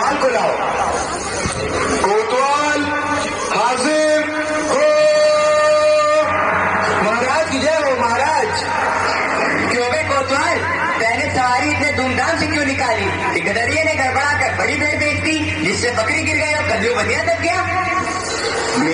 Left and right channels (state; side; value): identical; both; correlation 1.00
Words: को लाओ। कोतवाल हाजिर हो। महाराज की जय हो। महाराज, क्यों बे कोतवाल, पहले सवारी इतने धूमधाम से क्यों निकाली? ठेकेदारिये ने गड़बड़ा कर बड़ी भेड़ बेच दी, जिससे बकरी गिर गई और कद्दू बनिया तक गया।